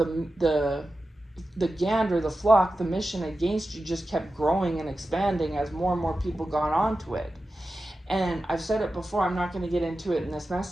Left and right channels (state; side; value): normal; both; correlation 0.93